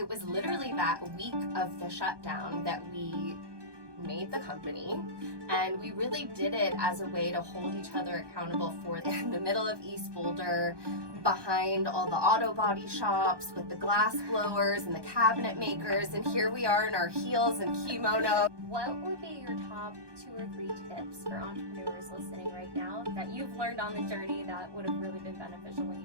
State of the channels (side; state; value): left; late; 1.2 ms